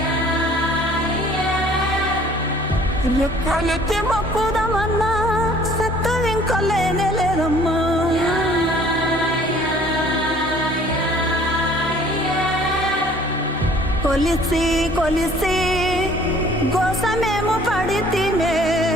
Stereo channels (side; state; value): both; normal; correlation 0.54